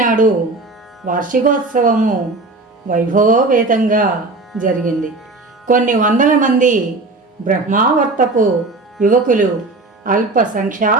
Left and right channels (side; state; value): left; quieter; 3.3 dB